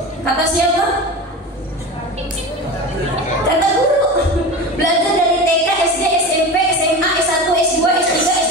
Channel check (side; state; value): both; normal; correlation 0.29